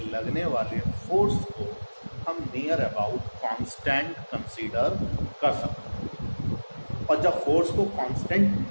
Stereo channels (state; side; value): inverted; both; correlation -1.00